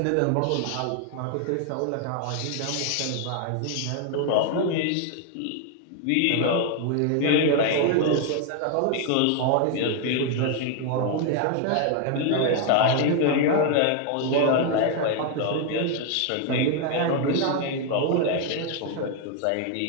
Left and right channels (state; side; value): different; both; correlation 0.00